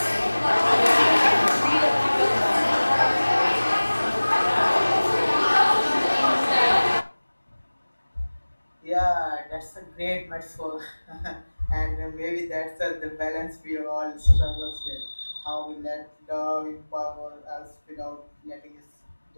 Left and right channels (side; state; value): both; inverted; correlation -1.00